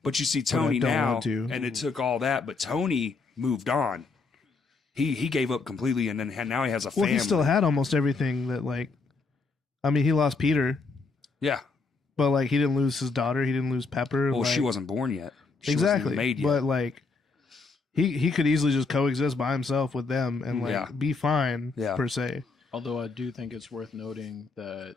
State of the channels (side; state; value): right; quieter; 4.2 dB